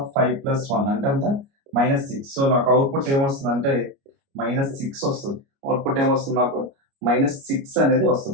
5 ప్లస్ 1 అంటే ఎంత? -6. సో, నాకు అవుట్‌పుట్ ఏమొస్తదంటే -6 వస్తది. అవుట్‌పుట్ ఏమొస్తుంది నాకు? -6 అనేది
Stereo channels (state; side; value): late; left; 29 ms